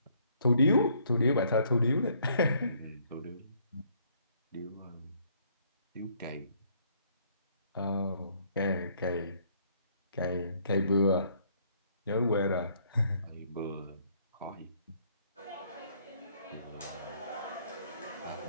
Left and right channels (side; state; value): both; inverted; correlation -0.65